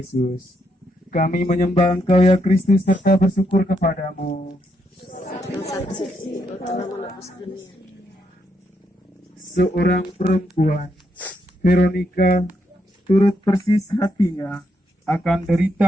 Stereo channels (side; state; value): both; normal; correlation 0.78